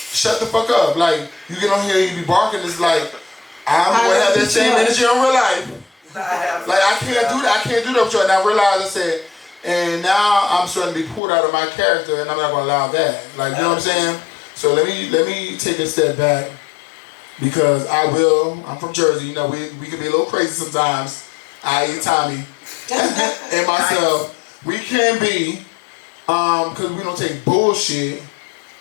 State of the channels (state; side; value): drops out; right; at 11.2 s